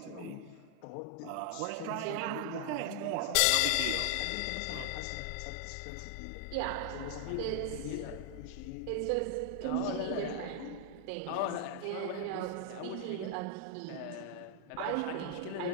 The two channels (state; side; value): different; both; correlation 0.00